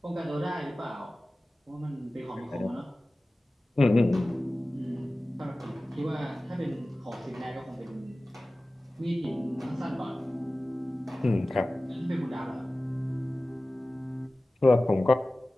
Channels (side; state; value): both; normal; correlation 0.97